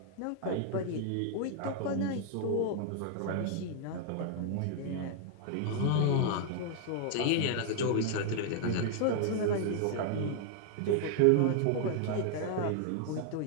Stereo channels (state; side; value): different; both; correlation 0.00